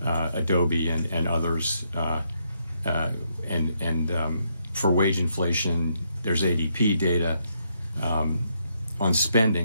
Adobe, and others. For wage inflation, there's ADP data. On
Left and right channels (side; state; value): both; inverted; correlation -0.76